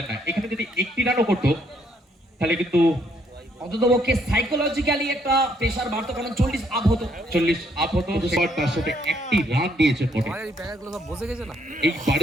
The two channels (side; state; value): both; normal; correlation 0.70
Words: না। এখানে যদি একটি রানও করতো তাহলে কিন্তু অন্ততপক্ষে সাইকোলজিক্যালি একটা প্রেশার বাড়তো, কারণ 40 আপ হতো। 40 আপ হতো, তার সাথে একটি রান দিয়েছে মোটে।